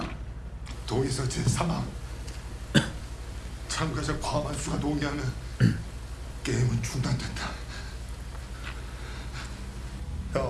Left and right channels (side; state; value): both; identical; correlation 1.00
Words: 동의서 제3항 참가자 과반수가 동의하면 게임은 중단된다.